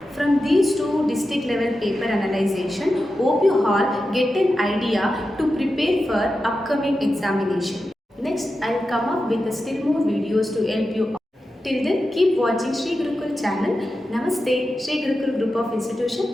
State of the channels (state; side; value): normal; both; correlation 0.91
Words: From these 2 district level paper analyzation, hope you all get an idea to prepare for upcoming examination. Next, I will come up with still more videos to help you all. Till then, keep watching Sri Gurukul channel. Namaste, Sri Gurukul Group of